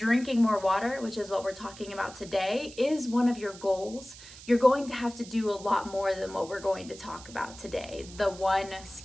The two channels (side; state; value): right; noise; hiss, 17 dB below the sound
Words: more water, which is what we're talking about today, is one of your goals, you're going to have to do a lot more than what we're going to talk about today, the one